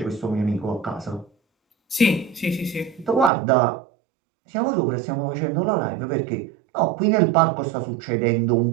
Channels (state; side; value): drops out; left; at 3.3 s